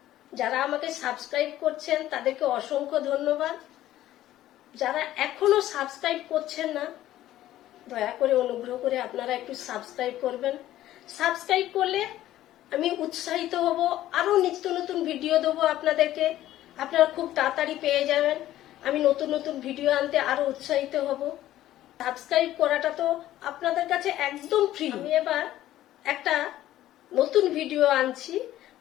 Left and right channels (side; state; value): right; quieter; 13.8 dB